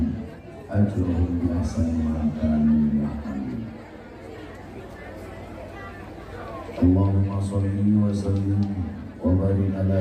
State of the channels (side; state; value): both; identical; correlation 1.00